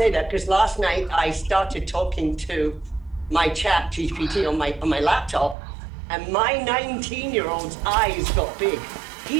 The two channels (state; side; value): drops out; left; at 5.6 s